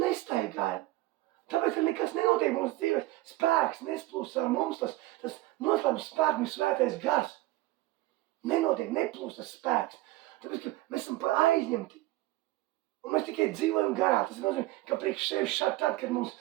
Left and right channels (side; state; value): left; quieter; 18.0 dB